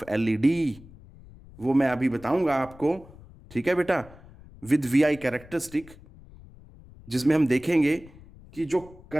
LED, वो मैं अभी बताऊंगा आपको, ठीक है बेटा, विद वीआई कैरेक्टरिस्टिक, जिसमें हम देखेंगे कि जो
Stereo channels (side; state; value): left; noise; rumble, 21 dB below the sound